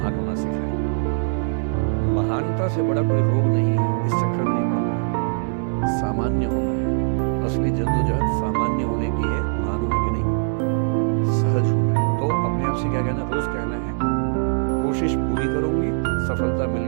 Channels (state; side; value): silent; left; digital silence